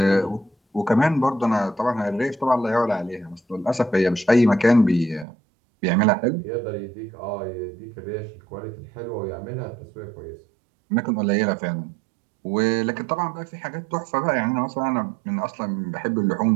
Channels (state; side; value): drops out; left; at 5.2 s